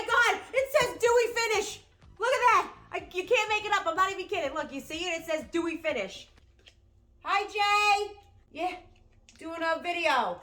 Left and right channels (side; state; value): both; identical; correlation 1.00